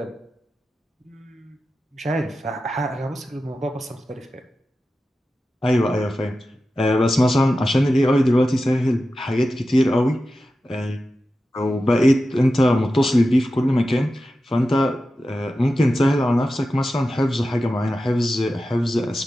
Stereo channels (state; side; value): normal; both; correlation 0.93